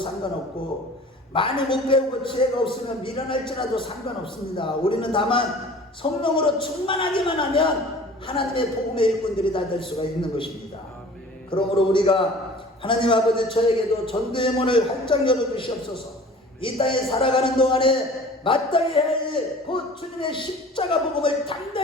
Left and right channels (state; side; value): normal; both; correlation 0.45